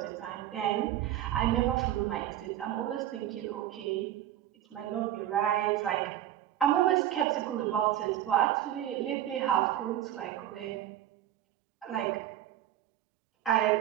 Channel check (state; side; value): quieter; left; 12.1 dB